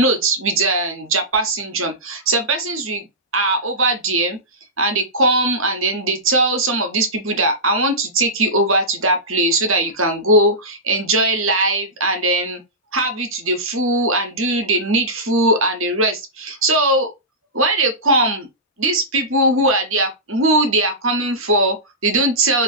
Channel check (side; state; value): both; normal; correlation -0.17